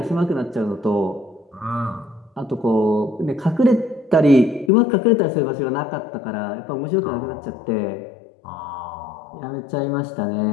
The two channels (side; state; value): right; drops out; at 4.7 s